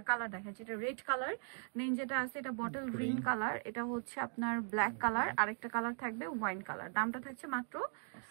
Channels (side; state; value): left; silent; 52 dB below the other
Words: কালার দেখাচ্ছি, এটা রেড কালার, দেন যেটা আছে এটা বটল গ্রিন কালার, এটা হচ্ছে আপনার ব্ল্যাক কালার, আরেকটা কালার থাকবে ওয়াইন কালার। দামটা থাকছে মাত্র